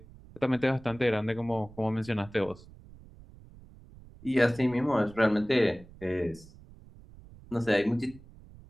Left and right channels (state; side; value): noise; right; rumble, 21 dB below the sound